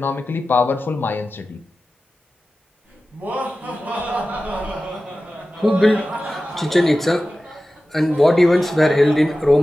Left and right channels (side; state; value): both; normal; correlation 0.95